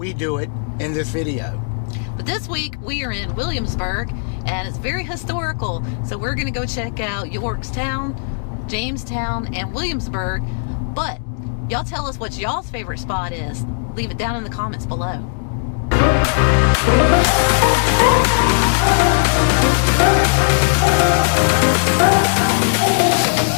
do it in this video. But this week we are in Williamsburg and it's very historical. So we're going to go check out Yorktown, Jamestown, and Williamsburg. But y'all tell us what y'all's favorite spot is. Leave it down in the comments below.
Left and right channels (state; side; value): silent; right; digital silence